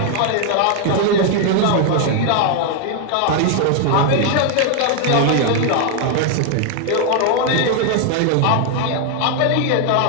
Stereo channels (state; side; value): different; both; correlation 0.00